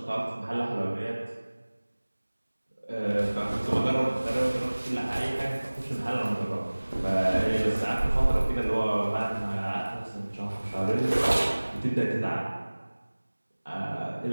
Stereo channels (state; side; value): inverted; both; correlation -1.00